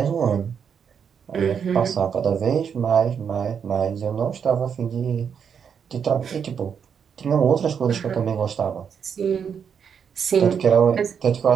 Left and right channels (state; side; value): quieter; left; 7.2 dB